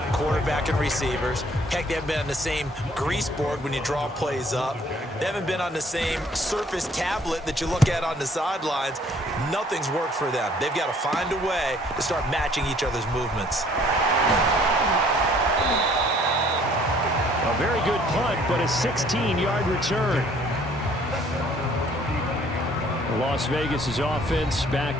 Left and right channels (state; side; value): normal; both; correlation 0.59